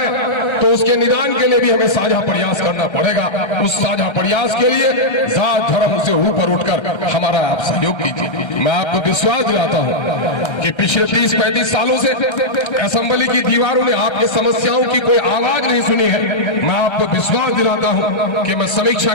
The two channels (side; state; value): right; late; 1.3 ms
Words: तो उसके निदान के लिए भी हमें साझा प्रयास करना पड़ेगा। उस साझा प्रयास के लिए जात धर्म से ऊपर उठकर हमारा आप सहयोग कीजिए। मैं आपको विश्वास दिलाता हूं कि पिछले 30-35 सालों से असेंबली की दीवारों ने आपकी समस्याओं की कोई आवाज नहीं सुनी है। मैं आपको विश्वास दिलाता हूं कि मैं समीक्षा